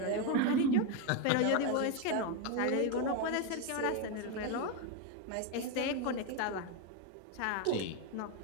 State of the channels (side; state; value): both; different; correlation 0.02